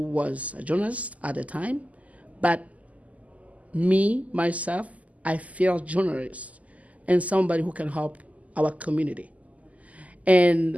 was a journalist at the time, but myself, I feel journalist and somebody who can help our community.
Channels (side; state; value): left; late; 0.072 ms